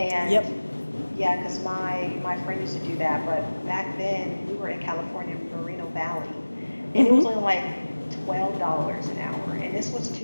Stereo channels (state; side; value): inverted; both; correlation -1.00